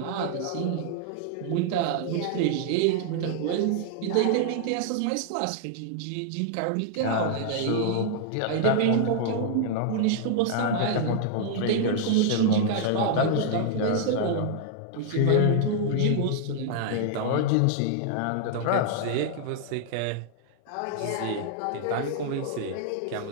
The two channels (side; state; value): both; different; correlation 0.00